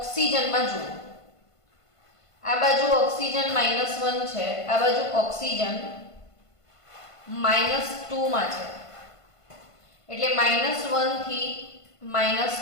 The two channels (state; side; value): late; right; 1.5 ms